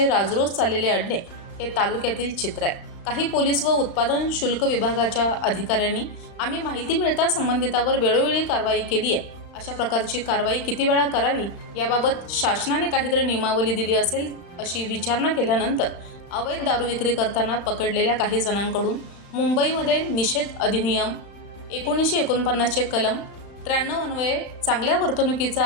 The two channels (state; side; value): late; right; 35 ms